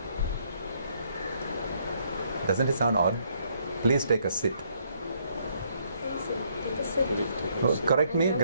Doesn't it sound odd? Please take a sit. Take a sit. Correct me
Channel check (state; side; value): inverted; both; correlation -0.70